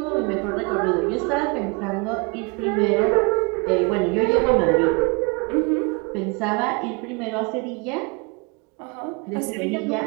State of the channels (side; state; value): left; quieter; 30.9 dB